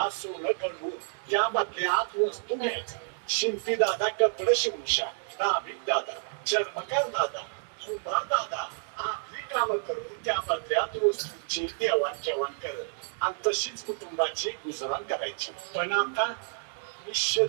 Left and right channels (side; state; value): left; silent; digital silence